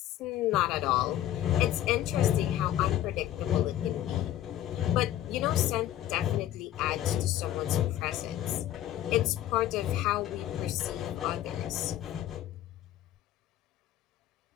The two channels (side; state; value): right; quieter; 12.7 dB